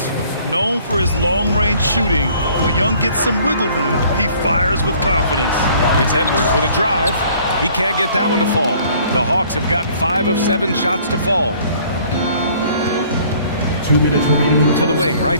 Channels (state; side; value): inverted; both; correlation -0.56